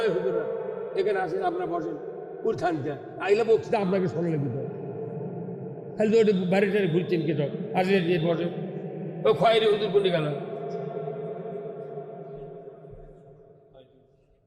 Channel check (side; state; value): both; identical; correlation 1.00